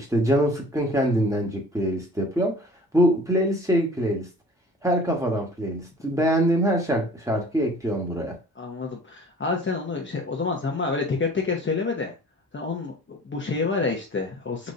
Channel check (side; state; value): both; normal; correlation 0.47